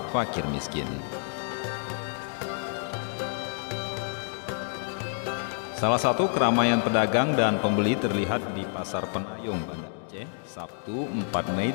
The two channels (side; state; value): right; silent; 59 dB below the other